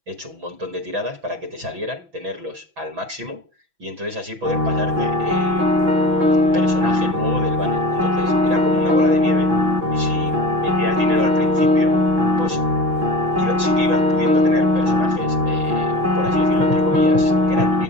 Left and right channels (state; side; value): late; left; 6.0 ms